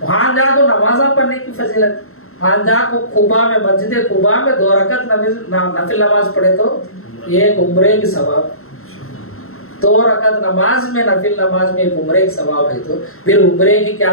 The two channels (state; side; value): late; right; 0.62 ms